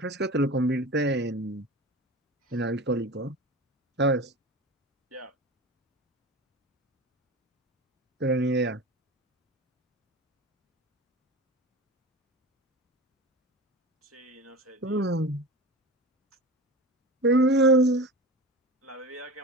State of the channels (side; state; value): both; normal; correlation 0.31